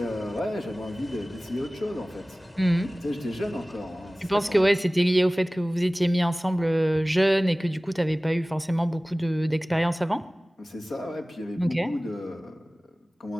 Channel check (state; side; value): normal; both; correlation 0.98